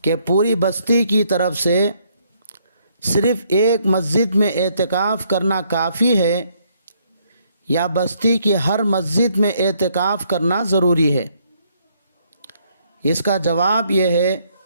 کہ پوری بستی کی طرف سے صرف ایک مسجد میں اعتکاف کرنا کافی ہے یا بستی کی ہر مسجد میں اعتکاف کرنا ضروری ہے؟ اس کا جواب یہ ہے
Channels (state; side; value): inverted; both; correlation -0.70